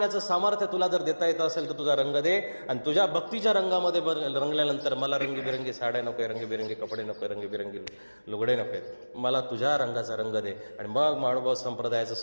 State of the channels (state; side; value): inverted; both; correlation -1.00